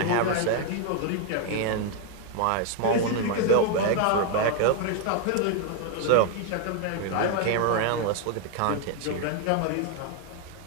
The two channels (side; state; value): both; different; correlation 0.01